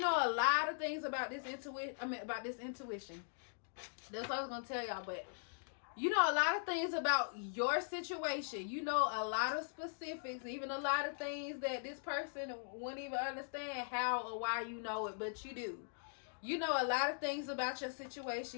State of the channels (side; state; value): right; silent; digital silence